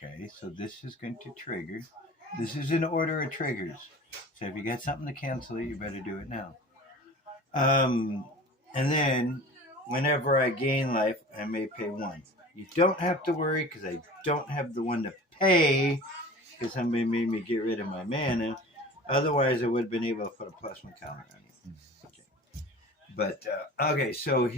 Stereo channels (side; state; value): both; normal; correlation 0.40